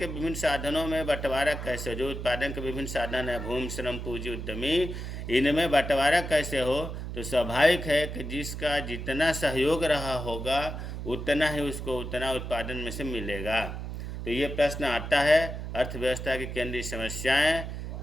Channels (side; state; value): right; noise; hum, 6 dB below the sound